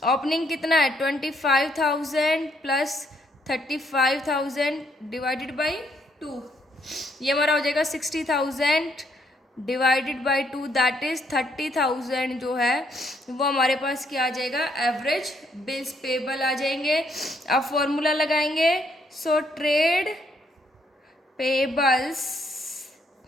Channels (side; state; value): both; normal; correlation 0.71